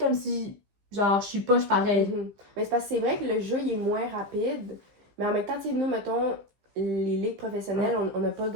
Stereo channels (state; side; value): late; left; 15 ms